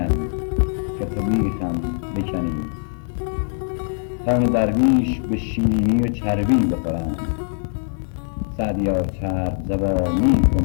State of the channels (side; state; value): right; silent; digital silence